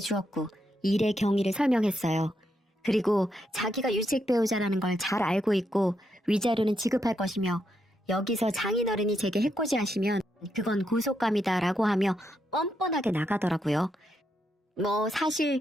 일의 경위를 설명했어요. 그리고 자기가 유책 배우자라는 걸 잘 알고 있고 위자료는 지급할 것이며 여기서 장인어른이 제게 해코지하시면 그건 고속감이다라고 하며 뻔뻔하게 나가더라고요. 뭐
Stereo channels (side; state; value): both; normal; correlation 0.80